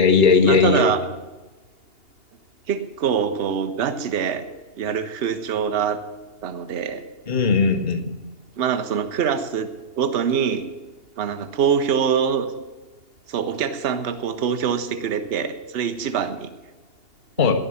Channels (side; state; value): left; late; 2.8 ms